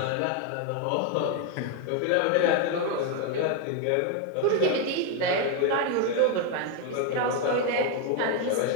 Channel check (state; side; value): different; both; correlation 0.01